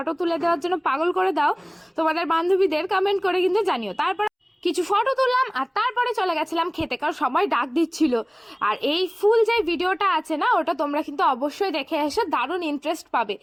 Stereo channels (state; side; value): identical; both; correlation 1.00